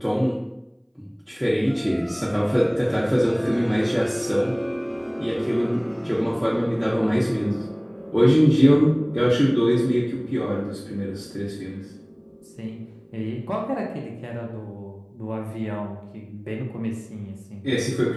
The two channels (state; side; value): identical; both; correlation 1.00